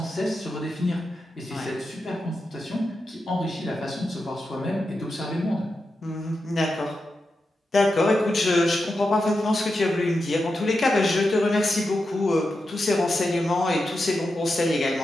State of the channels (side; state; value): both; normal; correlation 0.89